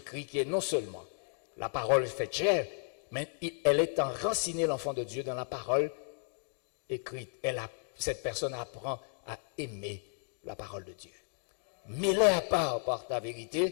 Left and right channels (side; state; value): right; silent; 55 dB below the other